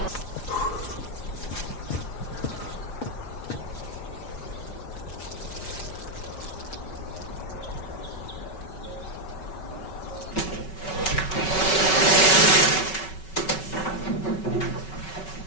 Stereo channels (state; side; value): late; right; 5.3 ms